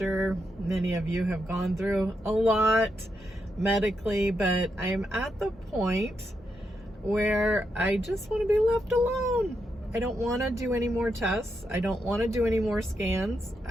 many of you have gone through a lot medically, but I am at the point where I just want to be left alone. I don't want to do any more tests. I don't want to do any more scans.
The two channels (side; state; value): both; normal; correlation 0.83